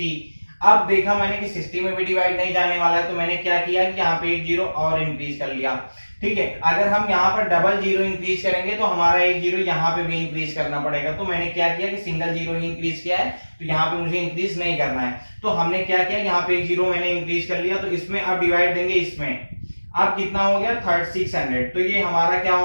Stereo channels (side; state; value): both; inverted; correlation -1.00